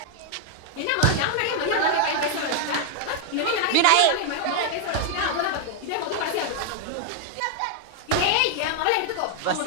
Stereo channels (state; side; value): different; both; correlation 0.00